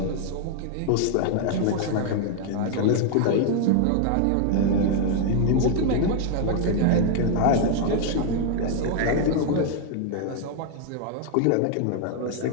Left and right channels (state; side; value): different; both; correlation 0.00